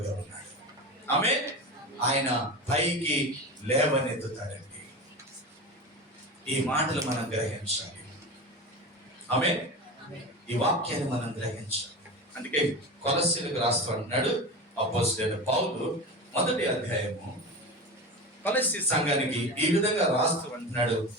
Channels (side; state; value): both; normal; correlation 0.27